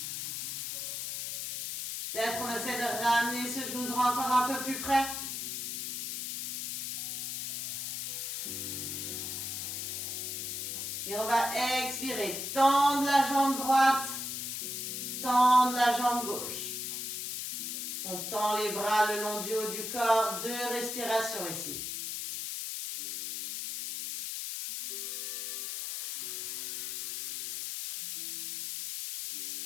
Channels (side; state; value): left; noise; hiss, 4 dB below the sound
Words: Peut-être qu'on essaie de ramener ce genou droit encore un peu plus près. Et on va expirer. Tendre la jambe droite. Tendre la jambe gauche. On tend les bras le long du haut du corps. 2 respirations ici.